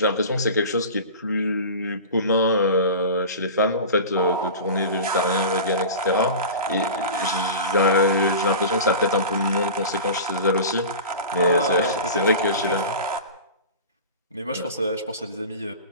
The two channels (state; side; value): inverted; both; correlation -0.32